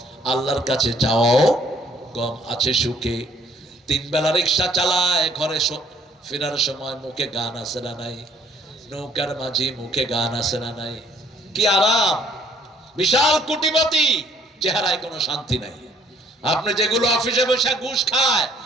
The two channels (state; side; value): normal; both; correlation 0.62